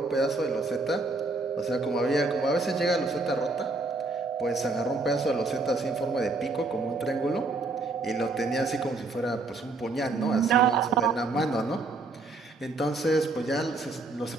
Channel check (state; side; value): quieter; left; 3.5 dB